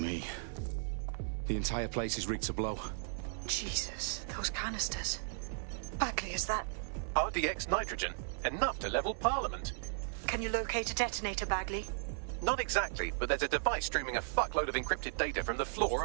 The entire place is rigged to blow. Jesus, those canisters. Bagley, is that... RDX nitrogen. Enough to level Parliament. Can you locate a detonator, Bagley? Not exactly, but there's a device streaming a fuckload of encrypted data from the floor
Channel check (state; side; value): silent; left; 54 dB below the other